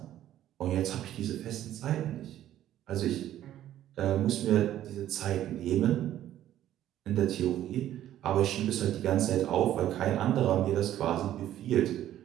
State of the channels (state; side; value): quieter; left; 12.3 dB